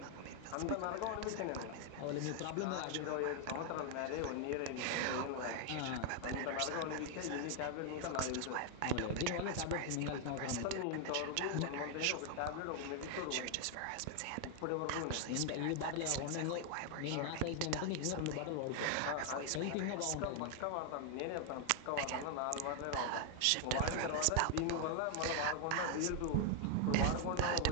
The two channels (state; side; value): different; both; correlation 0.00